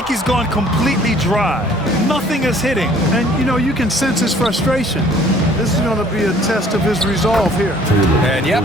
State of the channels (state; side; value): normal; both; correlation 0.56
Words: he's gone completely dry. Nothing is hitting. And, you know, you can sense his frustration. This is going to be a test of his resolve here. And, yep,